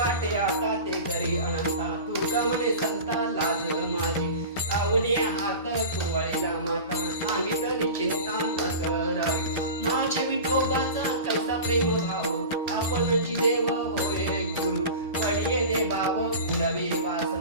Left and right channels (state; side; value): inverted; both; correlation -0.33